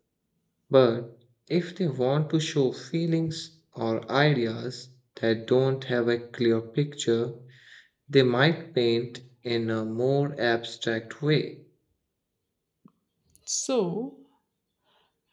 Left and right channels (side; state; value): both; identical; correlation 1.00